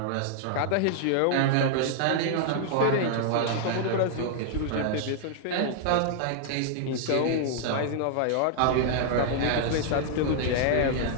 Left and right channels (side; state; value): both; different; correlation -0.01